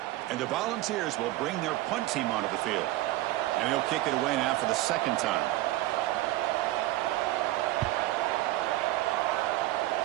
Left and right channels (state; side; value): quieter; left; 17.0 dB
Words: And the Volunteers will bring their punt team onto the field. And he'll kick it away now for the second time.